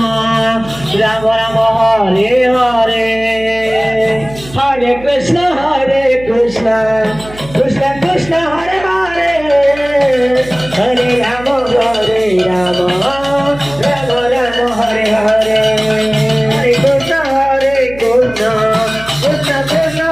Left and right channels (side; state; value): right; noise; hum, 17 dB below the sound